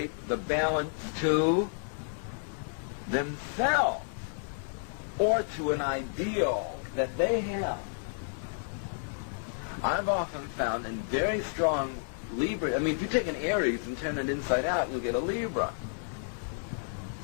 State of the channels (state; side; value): silent; right; digital silence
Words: the balance to themselves or to an ideal that they have. I've often found in very strong Libra. I mean, if you take an Aries and turn it inside out, you'll get a Libra.